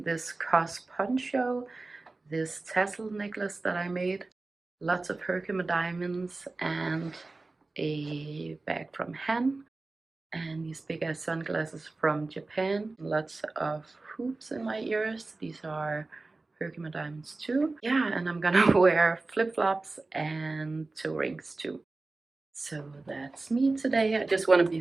this cos poncho, this tassel necklace that I made, lots of Herkimer diamonds, and a bag from Han, and these big ass sunglasses from Japan, lots of hoops in my ears. These are Herkimer diamonds too. Yeah, and I'm gonna wear flip-flops and toe rings too. So that's me today. I just want to be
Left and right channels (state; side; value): quieter; left; 3.4 dB